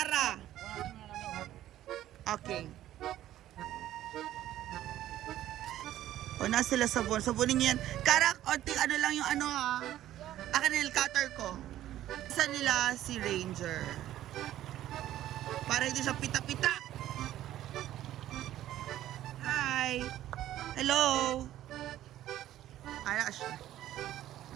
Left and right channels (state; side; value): quieter; left; 13.2 dB